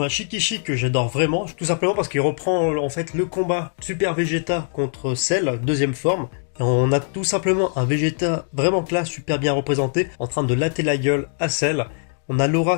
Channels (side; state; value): right; silent; digital silence